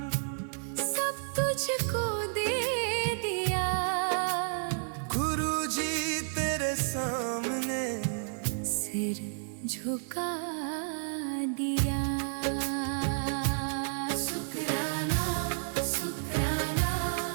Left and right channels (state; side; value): silent; left; digital silence